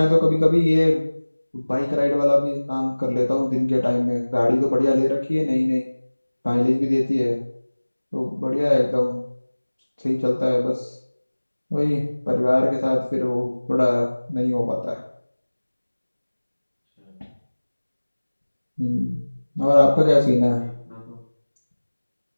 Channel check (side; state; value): both; inverted; correlation -1.00